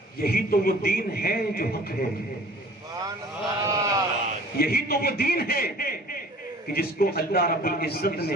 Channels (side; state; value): both; normal; correlation 0.48